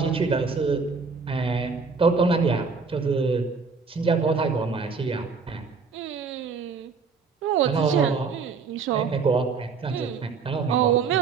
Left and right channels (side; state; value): left; quieter; 5.0 dB